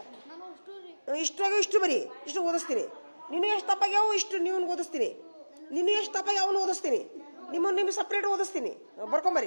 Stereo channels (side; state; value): both; inverted; correlation -1.00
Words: ಇಷ್ಟ್ರಾಗ ಇಷ್ಟು ಬರೀ, ಇಷ್ಟು ಓದಿಸ್ತೀನಿ. ನೀನು ಎಷ್ಟು ತಪ್ಪಾಗ್ಯಾವು ಇಷ್ಟು ನೀವು ಓದಿಸ್ತೀನಿ. ನೀನು ಎಷ್ಟು ತಪ್ಪಾಗಿ ಅವನು ಓದಿಸ್ತೀನಿ. ನಿಮಗೆ ಸಪ್ರೇಟ್ ಓದಿಸ್ತೀನಿ.